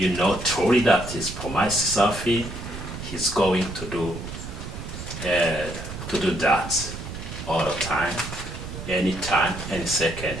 know truly that He's promised something, He's going to do that all the time, anytime, any second.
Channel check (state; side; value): noise; right; rumble, 9 dB below the sound